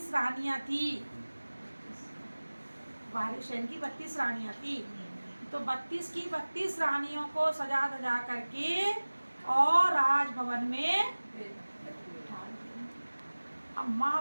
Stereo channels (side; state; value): both; inverted; correlation -1.00